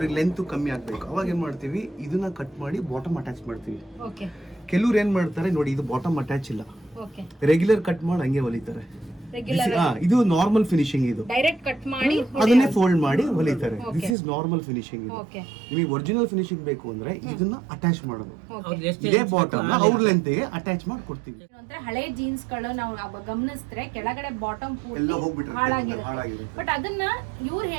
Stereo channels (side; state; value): left; drops out; at 14.2 s